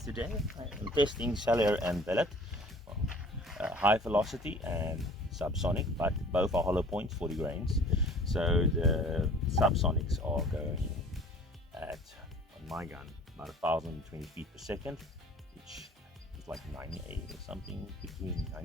today I am testing cellular and billet, high velocity and subsonic, but both are hollow points, 40 grains. So the subsonics are going at, on my gun, about 1,020 feet per second, which is like 98 or something, between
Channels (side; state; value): both; normal; correlation 0.49